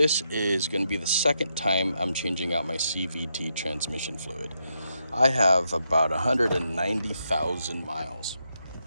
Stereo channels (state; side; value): inverted; both; correlation -0.82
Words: is going to be the second time I'm changing out my CVT transmission fluid. I have about 190,000 miles.